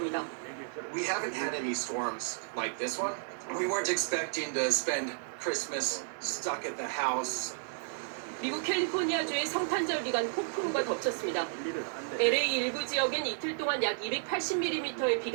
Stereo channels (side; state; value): left; silent; digital silence